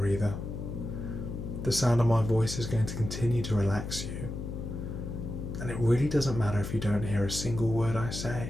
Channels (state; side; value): noise; left; hum, 6 dB below the sound